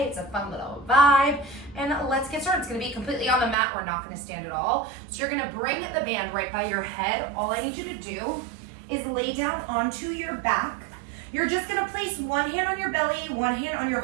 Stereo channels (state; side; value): drops out; left; at 3.6 s